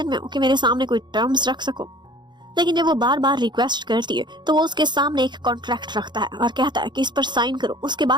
में हो कि मेरे सामने कोई टर्म्स रख सको। लेकिन जब वो बार बार रिक्वेस्ट करती है तो वो उसके सामने एक कॉन्ट्रैक्ट रखता है और कहता है कि इस पर साइन करो, उसके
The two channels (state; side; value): late; left; 0.21 ms